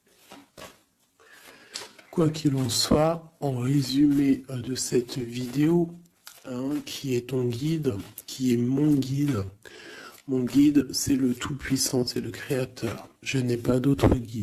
Quoi qu'il en soit, en résumé de cette vidéo, qui est ton guide, qui est mon guide. Mon guide, c'est le Tout-Puissant, c'est le Créateur. Je n'ai pas d'autre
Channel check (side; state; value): both; identical; correlation 1.00